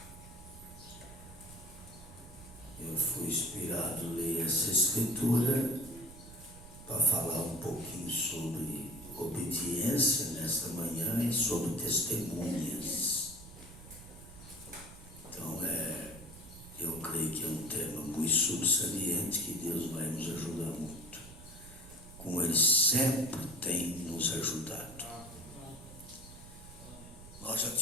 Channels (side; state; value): right; noise; rumble, 17 dB below the sound